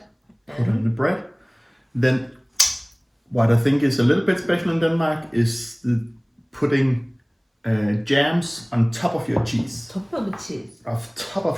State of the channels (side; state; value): both; identical; correlation 1.00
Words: Put on the bread. Then, what I think is a little bit special in Denmark is putting jams on top of your cheese. Top of cheese. Top